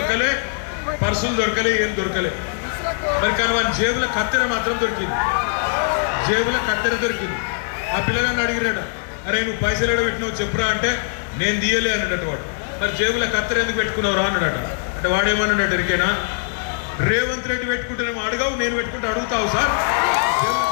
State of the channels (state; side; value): silent; right; digital silence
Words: పర్సులు దొరకలే, ఏం దొరకలే. మరి కానీ వాని జేబుల కత్తెర మాత్రం దొరికింది, జేబుల కత్తెర దొరికింది. ఆ పిల్లగాన్ని అడిగినట, అరే నువ్వు పైసలు ఎడ పెట్టినావు చెప్పురా అంటే, నేను తీయలే అన్నాడట వాడు. మరి జేబుల కత్తెర ఎందుకు పెట్టుకున్నావు రా అన్నాడట. అంటే వాడేమన్నాడు ఎరికేనా, రేవంత్ రెడ్డి పెట్టుకుంటేనేమో అడగావు, నేను పెట్టుకుంటే అడుగుతావు సార్,